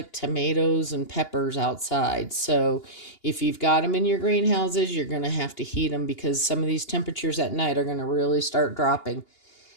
tomatoes and peppers outside. So if you've got them in your greenhouses, you're going to have to heat them because some of these temperatures at night are going to really start dropping.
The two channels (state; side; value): late; right; 2.8 ms